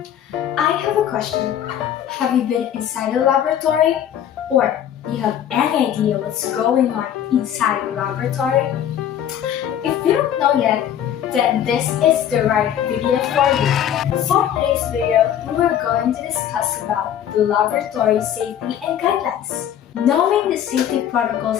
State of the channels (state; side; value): quieter; right; 10.1 dB